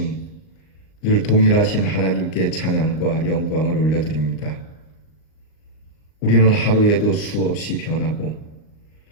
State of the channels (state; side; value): late; right; 39 ms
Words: 늘 동일하신 하나님께 찬양과 영광을 올려드립니다. 우리는 하루에도 수없이 변하고